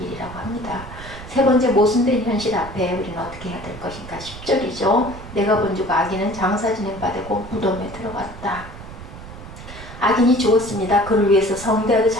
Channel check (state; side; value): noise; right; rumble, 14 dB below the sound